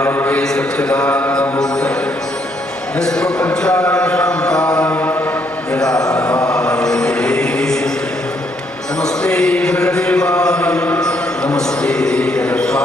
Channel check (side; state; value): both; normal; correlation 0.71